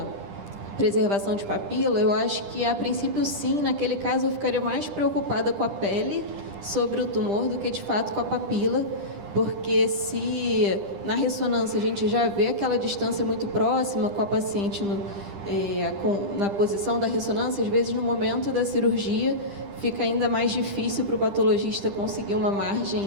preservação de papila, eu acho que, a princípio, sim. Naquele caso, eu ficaria mais preocupada com a pele sobre o tumor do que, de fato, com a papila, porque se na ressonância a gente já vê aquela distância muito próxima com a paciente na posição da ressonância, às vezes, no momento da cirurgia, fica ainda mais difícil para o patologista conseguir uma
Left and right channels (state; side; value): late; left; 10 ms